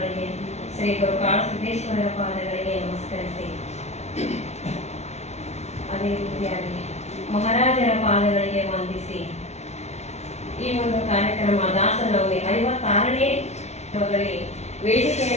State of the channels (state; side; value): late; right; 0.32 ms